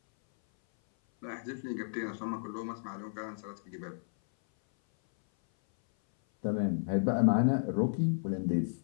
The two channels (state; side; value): silent; right; 56 dB below the other